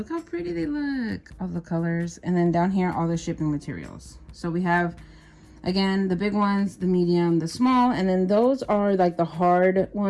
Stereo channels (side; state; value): both; identical; correlation 1.00